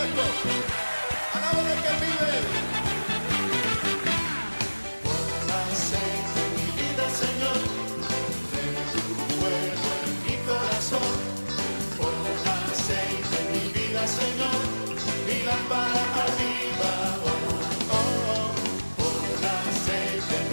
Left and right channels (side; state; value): both; inverted; correlation -1.00